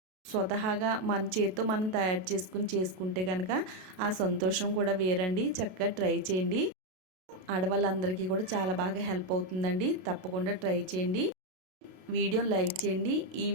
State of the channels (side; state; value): left; late; 32 ms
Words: స్వతహాగా మన చేతితో మనం తయారు చేసుకుంటే కనుక ఆ సంతోషం కూడా వేరండి. చక్కగా ట్రై చేయండి. ఆడవాళ్ళందరికీ కూడా చాలా బాగా హెల్ప్ అవుతుందండి. తప్పకుండా ట్రై చేయండి. వీడియోని లైక్ చేయండి. ఈ